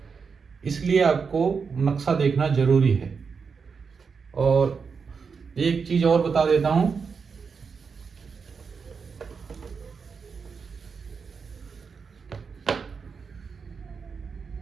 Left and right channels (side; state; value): left; quieter; 5.6 dB